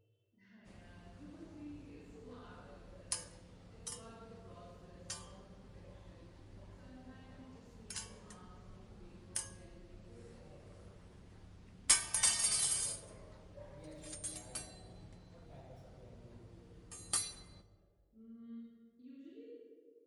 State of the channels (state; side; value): identical; both; correlation 1.00